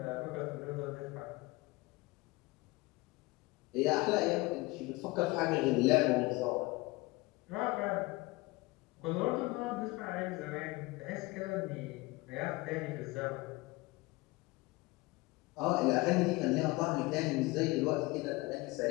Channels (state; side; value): quieter; right; 22.1 dB